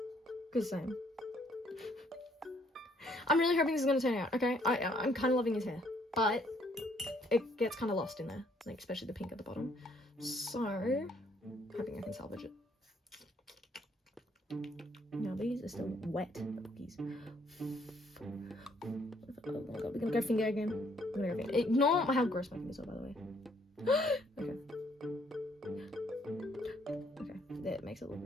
Cause same. I'm really hoping this is gonna turn out. Okay, I'm kind of loving his hair, but it gets kind of lost in there, like especially the pink at the bottom. So, hoping I can salvage it. Now these are still wet, the cookies. Oh my god, we're gonna go finger again. We're gonna go finger. Ignore how gross my fingers are, by the way. Okay. Okay, that makes it look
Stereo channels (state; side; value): normal; both; correlation 0.66